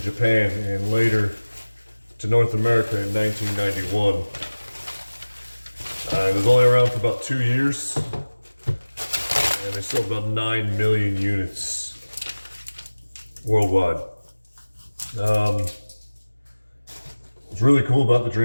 Japan and later to North America in 1991. It was only around for about 2 years and they sold about 9 million units worldwide. What's really cool about the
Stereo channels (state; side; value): inverted; both; correlation -1.00